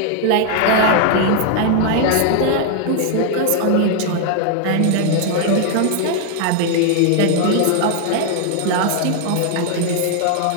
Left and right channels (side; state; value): both; different; correlation 0.00